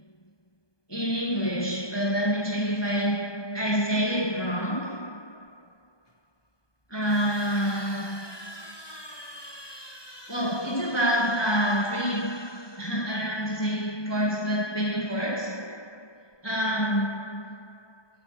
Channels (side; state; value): right; late; 1.2 ms